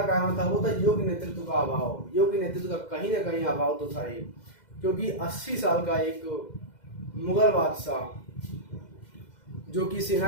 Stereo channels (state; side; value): late; right; 2.1 ms